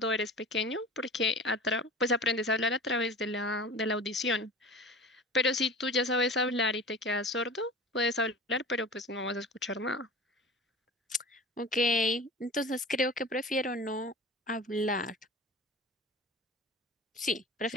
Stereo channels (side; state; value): both; normal; correlation 0.36